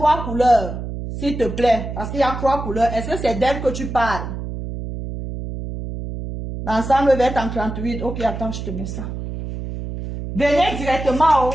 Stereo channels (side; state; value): right; noise; hum, 7 dB below the sound